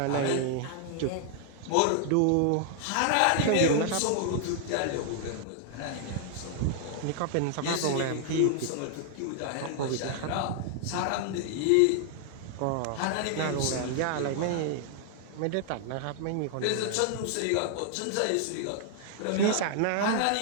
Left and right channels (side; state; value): both; different; correlation 0.00